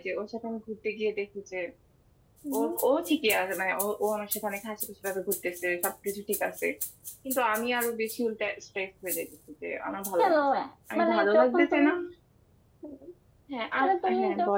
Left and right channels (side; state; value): both; identical; correlation 1.00